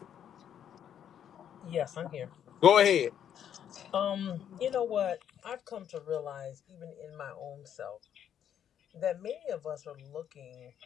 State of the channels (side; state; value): right; quieter; 9.4 dB